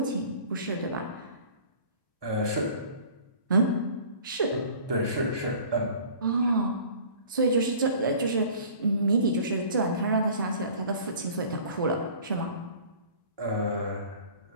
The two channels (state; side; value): inverted; both; correlation -0.47